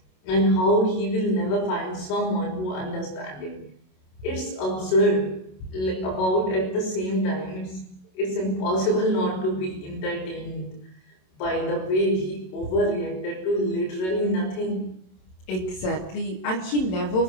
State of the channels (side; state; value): right; late; 27 ms